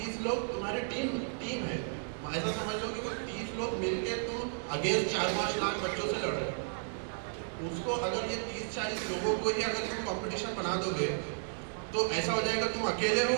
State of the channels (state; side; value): silent; left; digital silence